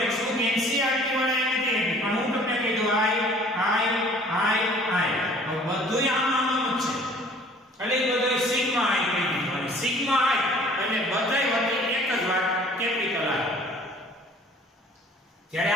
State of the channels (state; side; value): normal; both; correlation 0.52